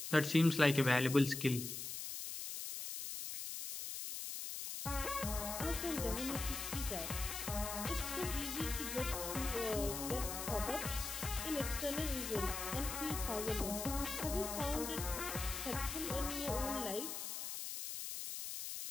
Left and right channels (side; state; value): left; noise; hiss, 5 dB below the sound